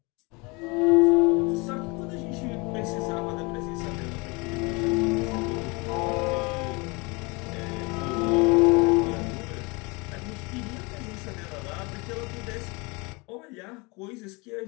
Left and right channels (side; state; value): right; quieter; 27.7 dB